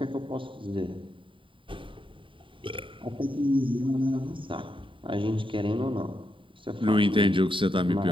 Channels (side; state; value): left; late; 0.25 ms